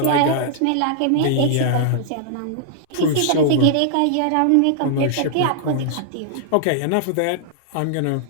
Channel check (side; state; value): both; different; correlation -0.01